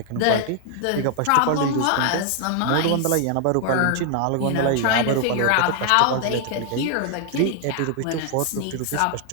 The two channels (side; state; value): both; different; correlation 0.00